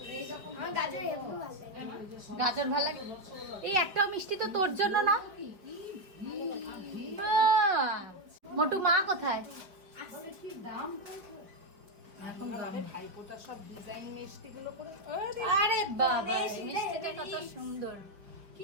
গাজর ভালো লাগে। এই একটাও মিষ্টি তো তোর জন্য না? মোটু মা কোথায়? এখন ভাইপোটার সব ডিজাইন মিষ্টিগুলো করে। আরে বাবা, মিষ্টিটা কত সুন্দর।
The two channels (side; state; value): left; late; 5.2 ms